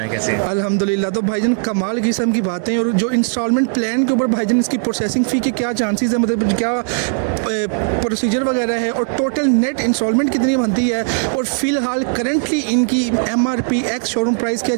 कैसे हैं? अल्हम्दुलिल्लाह। तो भाईजान कमाल किस्म की बातें। और जो इंस्टॉलमेंट प्लान के ऊपर भाईजान इसकी प्रोसेसिंग फ़ी के क्या चांसेस है, मतलब क्या प्रोसीजर वगैरह है और टोटल नेट इंस्टॉलमेंट कितनी बनती है और फ़िलहाल करंटली इनकी MRP एक्स शोरूम प्राइस क्या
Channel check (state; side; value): silent; left; digital silence